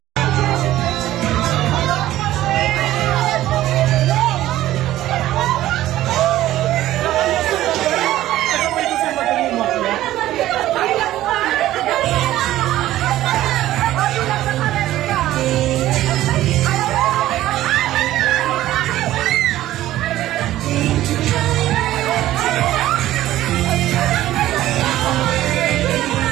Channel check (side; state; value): left; quieter; 14.4 dB